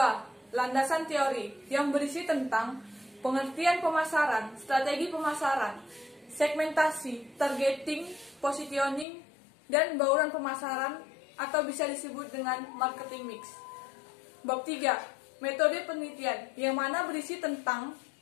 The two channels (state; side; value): drops out; right; at 9.1 s